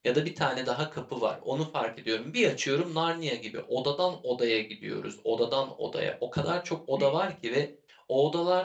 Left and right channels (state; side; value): identical; both; correlation 1.00